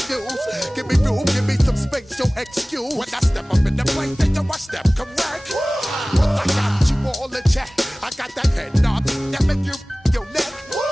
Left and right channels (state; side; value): normal; both; correlation 0.98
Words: Give me room, give me some space, your excuse. When I step up in the place, then you I step correct. But I got you all in check. I got that head knob that make you your neck.